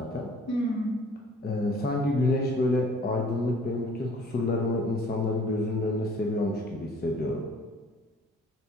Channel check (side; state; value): both; normal; correlation 0.54